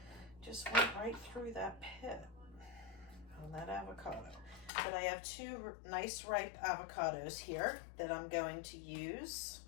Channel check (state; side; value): drops out; right; at 4.7 s